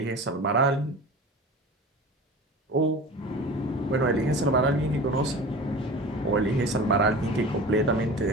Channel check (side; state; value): both; normal; correlation 0.36